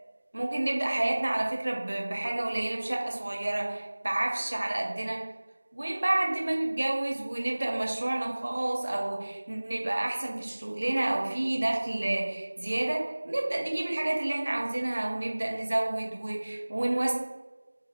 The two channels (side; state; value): both; inverted; correlation -1.00